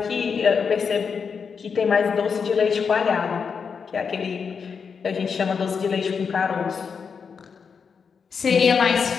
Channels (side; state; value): right; quieter; 6.0 dB